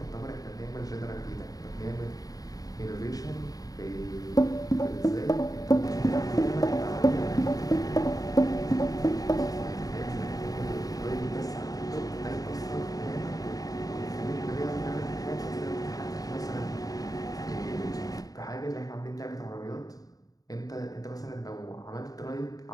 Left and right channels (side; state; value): right; late; 0.18 ms